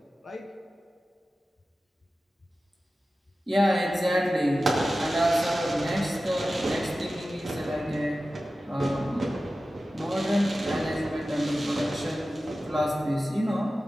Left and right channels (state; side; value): normal; both; correlation 0.94